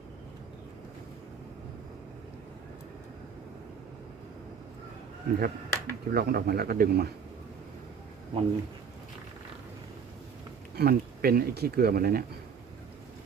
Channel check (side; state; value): left; quieter; 6.6 dB